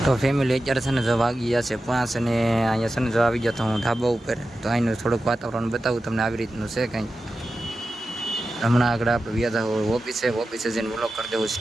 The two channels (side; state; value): both; normal; correlation 0.92